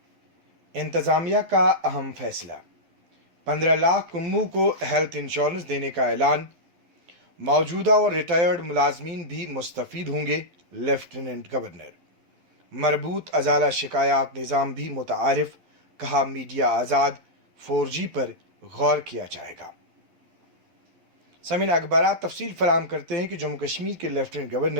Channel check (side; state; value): left; late; 11 ms